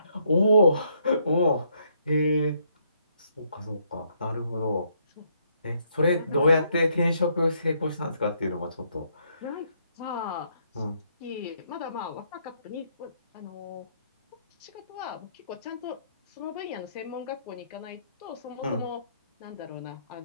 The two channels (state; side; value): inverted; both; correlation -0.71